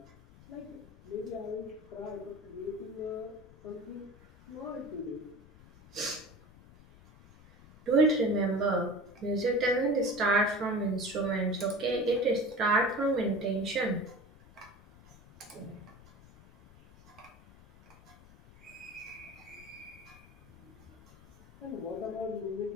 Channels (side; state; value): left; noise; rumble, 22 dB below the sound